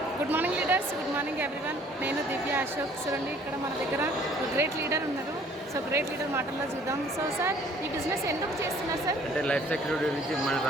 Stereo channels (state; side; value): normal; both; correlation 0.56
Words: Good morning leaders, good morning everyone. నేను దివ్య అశోక్. చూడండి ఇక్కడ మన దగ్గర గ్రేట్ లీడర్ ఉన్నారు. సో గ్రేట్ లీడర్ మాటల్లో చూద్దాం. సో సార్, ఈ బిజినెస్ ఎందుకు చేస్తున్నారు సార్? అంటే లైఫ్ సెక్యూరిటీ గురించి, మన